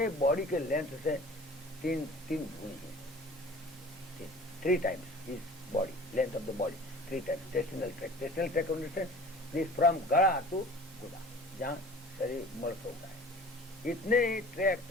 बॉडी के लेंथ से तीन गुनी है, 3 times his body, length of the body, 3 times intestinal tract. Intestinal tract understand this from गला टू गुदा, जहाँ शरीर मर्स होता है, इतने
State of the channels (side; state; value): both; normal; correlation 0.44